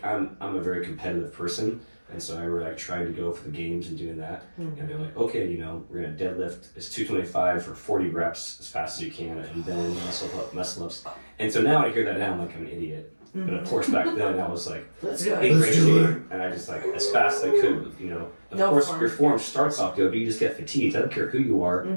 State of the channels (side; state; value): both; inverted; correlation -1.00